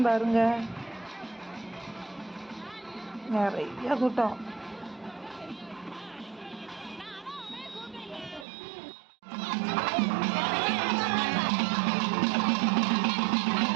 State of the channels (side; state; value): left; drops out; at 8.5 s